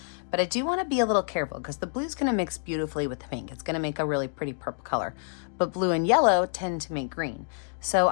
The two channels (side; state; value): right; silent; 60 dB below the other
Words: but I do wanna be a little careful because the blue's gonna mix beautifully with the pink. It's gonna make a really pretty purple color. But blue and yellow tend to make green. So